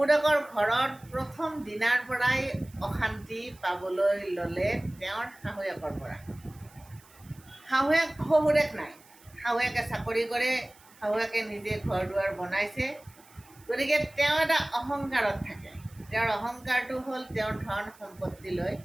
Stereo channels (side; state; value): right; noise; hiss, 26 dB below the sound